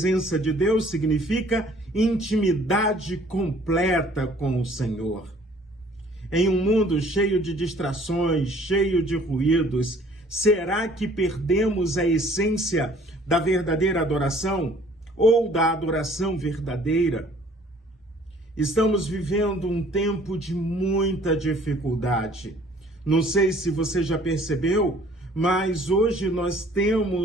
de Deus significa intimidade completa com o Senhor. Em um mundo cheio de distrações, cheio de ruídos, será que perdemos a essência da verdadeira adoração ou da adoração verdadeira? Estamos vivendo um tempo de muita dificuldade. Não sei se você já percebeu, mas hoje nós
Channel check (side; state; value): both; normal; correlation 0.56